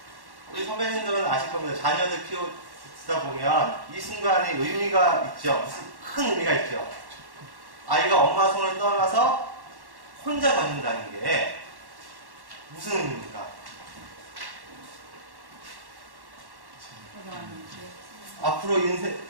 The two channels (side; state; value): left; late; 1.1 ms